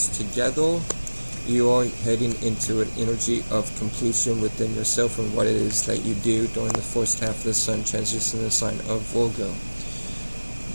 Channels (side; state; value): both; inverted; correlation -1.00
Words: together, you are heading into an energy of completion within yourself and what it is that you do during the first half of the sun transitioning the sign of Virgo.